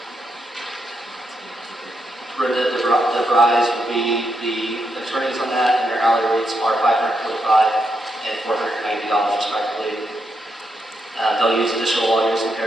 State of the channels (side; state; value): both; normal; correlation 0.82